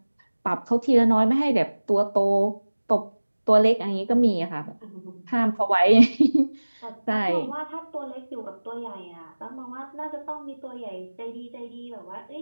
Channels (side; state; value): both; inverted; correlation -1.00